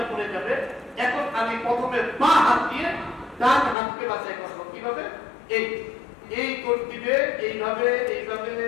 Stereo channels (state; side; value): drops out; right; at 3.8 s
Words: পড়ে যাবে। এখন আমি প্রথমে বাঁ হাত দিয়ে ডান হাতকে বাছাই করবো। কিভাবে? এই এই কোট দিবে, এইভাবে এইভাবে